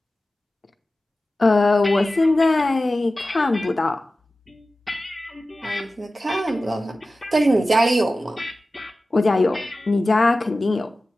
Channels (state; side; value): normal; both; correlation 0.95